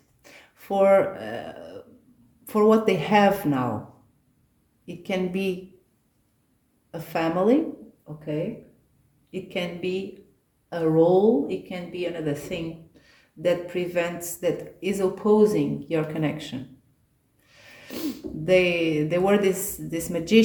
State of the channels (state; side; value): identical; both; correlation 1.00